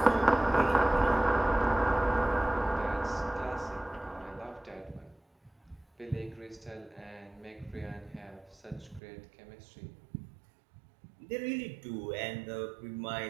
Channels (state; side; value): drops out; left; at 9.0 s